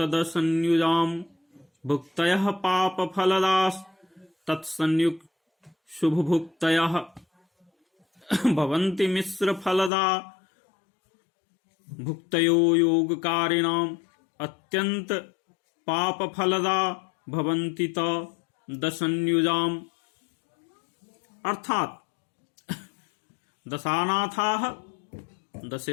भुक्तयः पापफलदास् तत्संयुक् शुभभुक्तयः भवन्ति मिश्रफलदा भुक्तयो योगकारिणाम् अत्यन्त पापफलदा भवन्ति त दशन्युजाम्। अर्थात दशानाथाः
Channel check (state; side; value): drops out; right; at 9.9 s